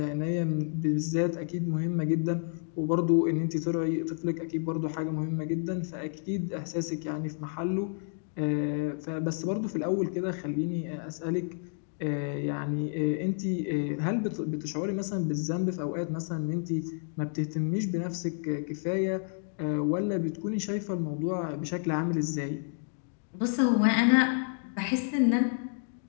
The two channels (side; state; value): right; silent; 58 dB below the other